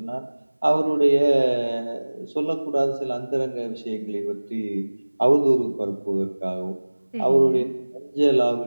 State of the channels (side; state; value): both; inverted; correlation -1.00